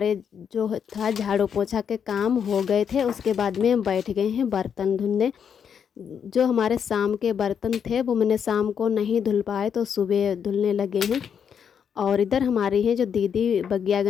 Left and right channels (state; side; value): quieter; right; 7.6 dB